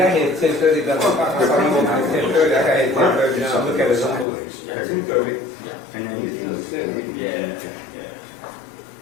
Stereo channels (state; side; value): drops out; right; at 4.2 s